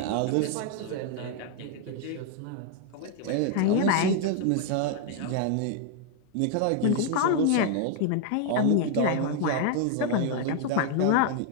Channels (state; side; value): different; both; correlation 0.00